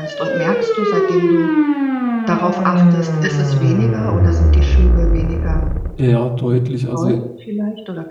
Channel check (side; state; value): both; identical; correlation 1.00